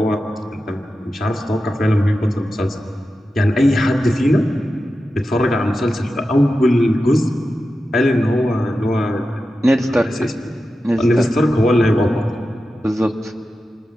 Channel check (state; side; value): normal; both; correlation 0.92